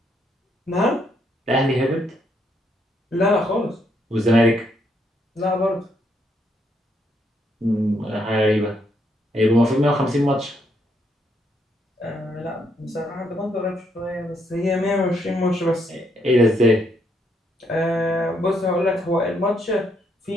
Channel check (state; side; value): normal; both; correlation 0.74